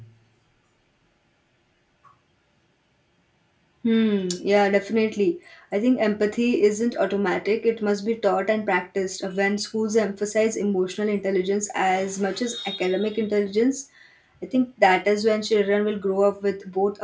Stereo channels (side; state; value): both; identical; correlation 1.00